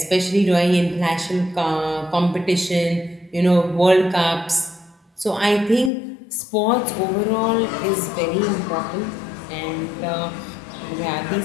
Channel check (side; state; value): right; drops out; at 5.9 s